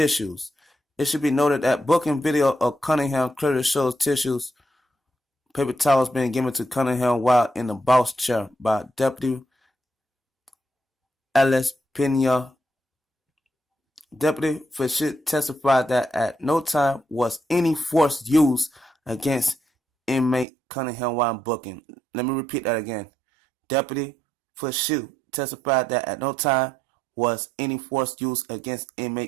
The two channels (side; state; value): left; drops out; at 20.5 s